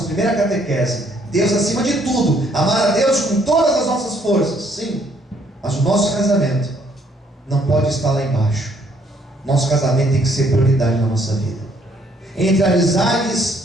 primeira catequese. Deus acima de tudo. Amar a Deus com todas as nossas forças. Sim. Mas o nosso casamento não pode estar lá embaixo. Nosso casamento tem que ser prioridade na nossa vida. Entre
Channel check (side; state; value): both; normal; correlation 0.66